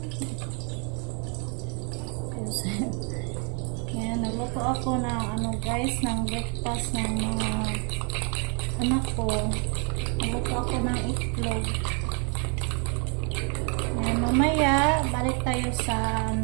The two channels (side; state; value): left; quieter; 37.4 dB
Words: Yan, nagluto ako ng guys, ng breakfast ng mga anak ko. Nagluto ako ng itlog. Yan, mamaya, balik tayo sa